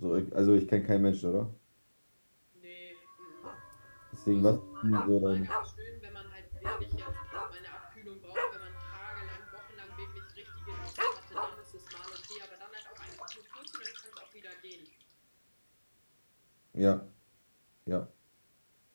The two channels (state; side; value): inverted; both; correlation -1.00